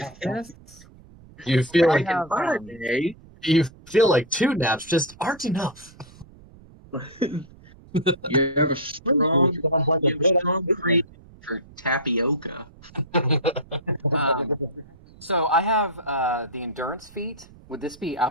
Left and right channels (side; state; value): right; noise; rumble, 23 dB below the sound